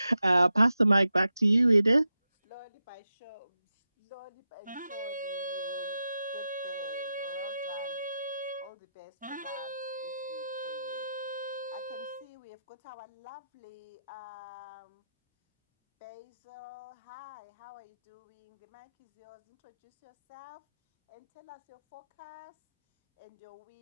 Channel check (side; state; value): both; inverted; correlation -0.89